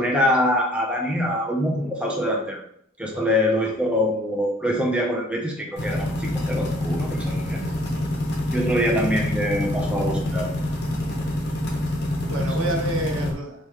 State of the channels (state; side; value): normal; both; correlation 0.61